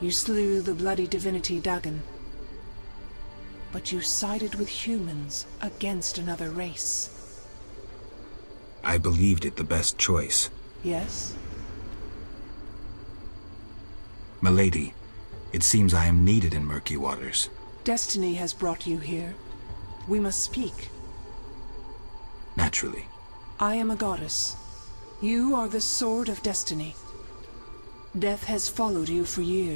slew the bloody divinity Dagon. But you sided with humans against another race. I believed it the best choice. Yes? Milady, it seems I am needed in murky waters. Destiny has brought you here. We must speak. Naturally. I am a goddess. You are the sword of destiny. Death has followed you for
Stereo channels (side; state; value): both; inverted; correlation -1.00